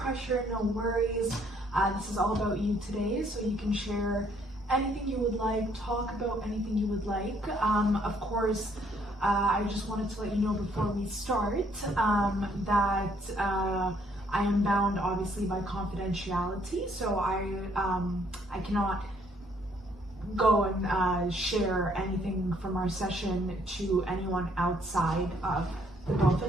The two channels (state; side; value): normal; both; correlation 0.66